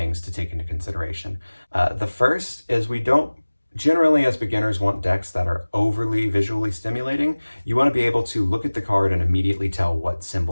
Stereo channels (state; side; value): inverted; both; correlation -1.00